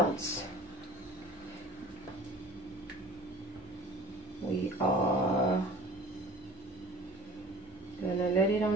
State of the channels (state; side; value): normal; both; correlation 0.45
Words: We are gonna let it